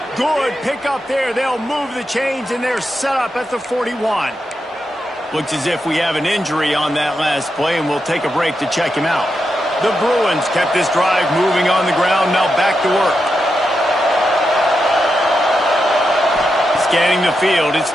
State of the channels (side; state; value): both; normal; correlation 0.86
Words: Good pick up there. They'll move the chains, and they're set up at the 41. Looks as if we have an injury on that last play, and we'll take a break to check him out. The Bruins kept this drive moving on the ground. Now back to work. Scanning the field, it's